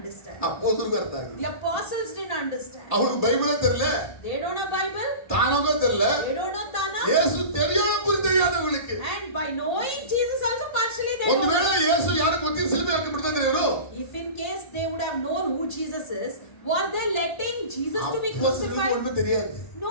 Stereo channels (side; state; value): right; late; 1.8 ms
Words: ಅಪೊಸ್ತಲರಿಗೂ ಅರ್ಥ ಆಗಿಲ್ಲ. The apostles didn't understand. ಅವ್ರಿಗೆ ಬೈಬಲ್ ತೆರಲ. They don't know Bible. ತಾನೋಗ ತೆರಲ. They don't know Tana. ಯೇಸು தெரியாம புரியாதவங்களுக்கு. And by knowing Jesus also partially they ಒಂದು don't. ವೇಳೆ ಯೇಸು ಯಾರು ಗೊತ್ತಿಲ್ಲ ಸಿಲುಬೆ ಹಾಕಿ ಬಿಡ್ತಿದ್ರು ಇವರು. If in case they would have known who Jesus is, were they letting Jesus to be crucified? ஒண்ணுமே தெரியாது.